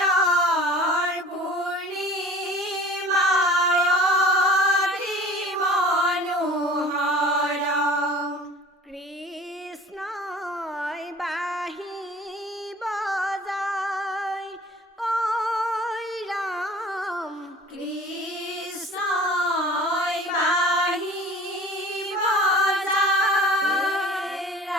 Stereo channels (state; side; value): normal; both; correlation 0.44